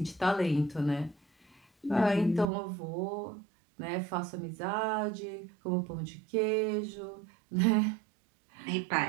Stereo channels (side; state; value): left; drops out; at 2.5 s